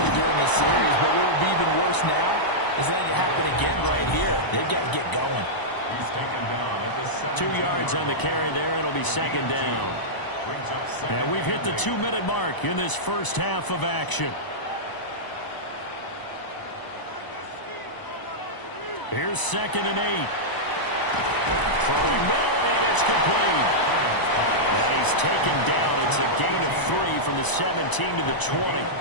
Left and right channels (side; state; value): right; late; 1.0 ms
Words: during a series, but what would be even worse now is letting it happen again right here. They've got to get going. He's taken down at the 2 yards on the carry there. It'll be 2nd down. Brings up 2nd And we've hit the 2-minute mark in this first half of action. Here's 2nd and 8. Throwing middle, and it's complete. And he's taken down. It's a gain of 3 from the 17 to the 20.